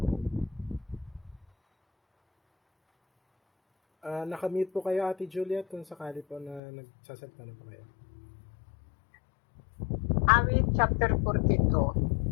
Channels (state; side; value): drops out; right; at 6.6 s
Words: Nakamute po kayo, Ate Juliet, kung sakali po na nagsasalita na po kayo. Awit chapter